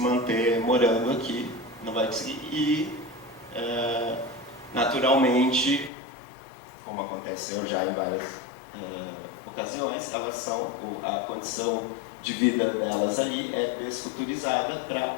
morando aqui, não vai conseguir, e naturalmente, como aconteceu já em várias ocasiões, a condição de vida delas ali é desfuturizada para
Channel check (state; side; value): drops out; right; at 5.9 s